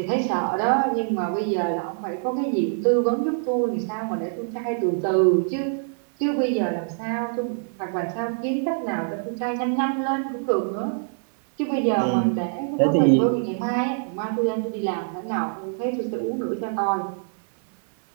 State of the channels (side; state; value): left; silent; digital silence